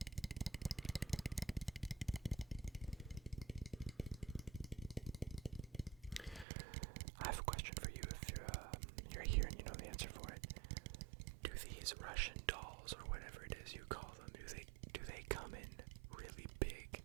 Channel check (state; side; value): drops out; left; at 6.5 s